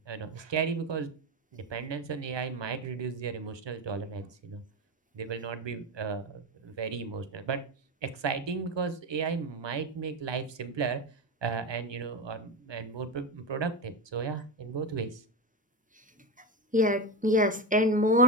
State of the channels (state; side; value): normal; both; correlation 0.17